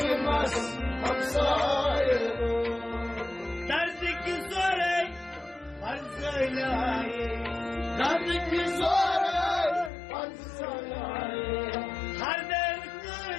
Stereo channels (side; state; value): right; drops out; at 9.9 s